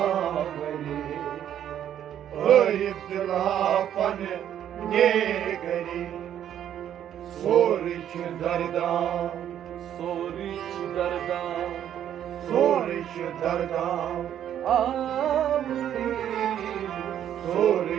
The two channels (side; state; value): left; quieter; 10.3 dB